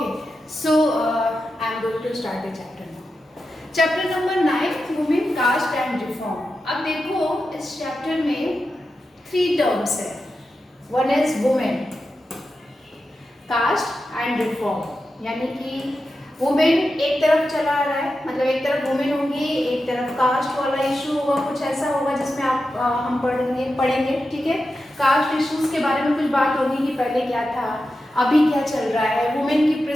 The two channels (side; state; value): both; normal; correlation 0.90